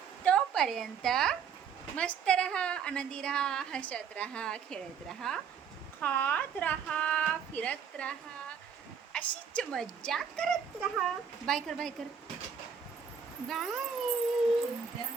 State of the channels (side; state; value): left; quieter; 6.9 dB